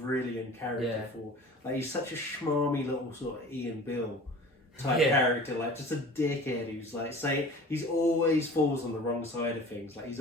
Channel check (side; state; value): both; normal; correlation 0.42